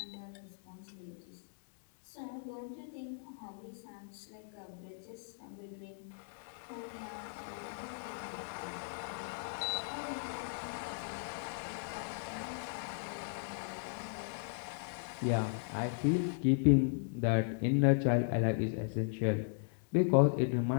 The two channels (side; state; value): right; silent; digital silence